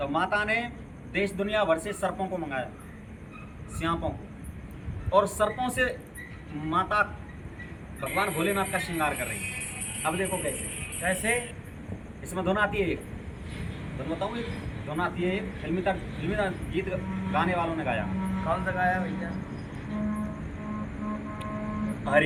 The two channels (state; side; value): identical; both; correlation 1.00